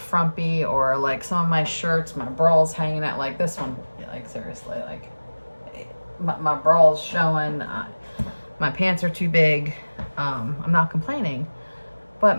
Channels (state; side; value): inverted; both; correlation -1.00